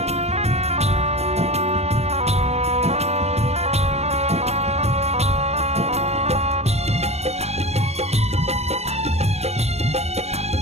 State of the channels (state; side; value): late; left; 0.31 ms